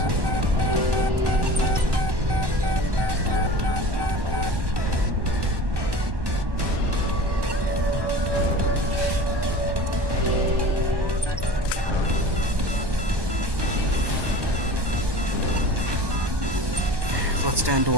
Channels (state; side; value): late; left; 1.1 ms